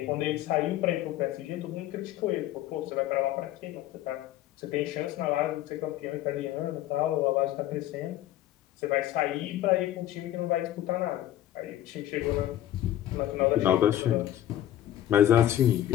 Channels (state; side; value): quieter; right; 12.8 dB